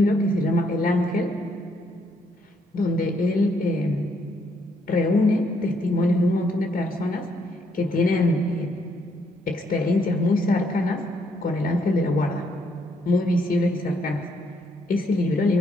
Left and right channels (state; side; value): normal; both; correlation 0.73